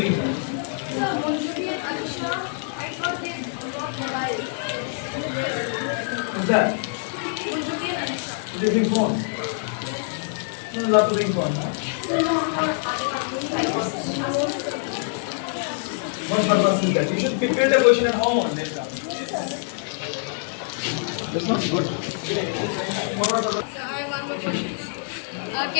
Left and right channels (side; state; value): right; silent; 60 dB below the other